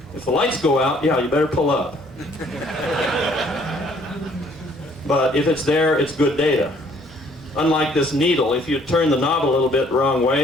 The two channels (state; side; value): normal; both; correlation 0.61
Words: If the lights go out, yeah, you better pull up. But if it's there, it's good data. Unlike this needle, if you turn the knob a little bit the wrong